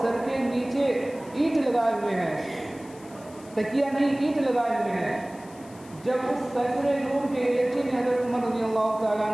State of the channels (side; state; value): left; noise; hiss, 24 dB below the sound